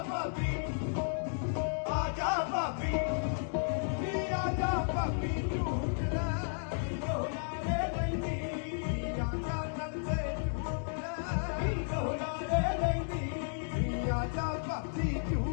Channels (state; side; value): silent; right; digital silence